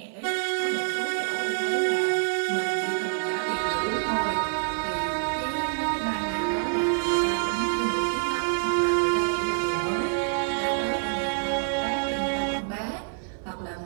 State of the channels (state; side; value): silent; left; 60 dB below the other